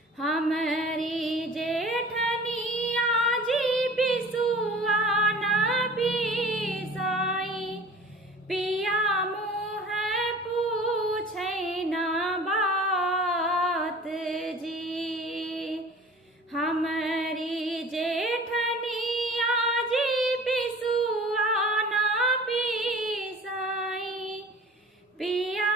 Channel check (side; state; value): both; normal; correlation 0.43